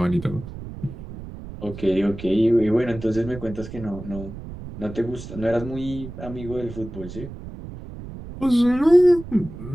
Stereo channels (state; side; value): noise; right; rumble, 12 dB below the sound